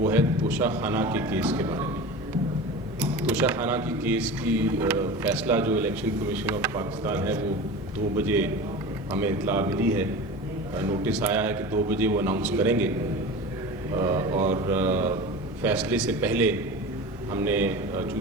ہے توشہ خانہ کے کیس کے بارے میں۔ توشہ خانہ کی کیس کی فیصلہ جو الیکشن کمیشن آف پاکستان ہے وہ 2 بجے ہمیں اطلاع ملی ہے، نوٹس آیا ہے کہ 2 بجے وہ اناؤنس کریں گے، اور فیصلے سے پہلے ہم نے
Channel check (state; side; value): normal; both; correlation 0.32